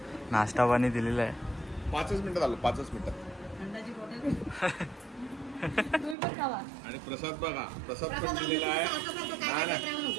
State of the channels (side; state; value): left; drops out; at 6.2 s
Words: नाश्ता पाणी दिलेला आहे. 5च मिनिटात आलो, 5च मिनिटात. थंडाची बॉटल तुम्ही पण खावा. आणि प्रसाद बघा, प्रसाद पण दिलेला आहे. नाही